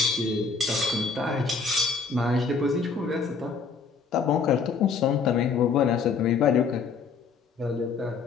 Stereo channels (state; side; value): quieter; right; 5.1 dB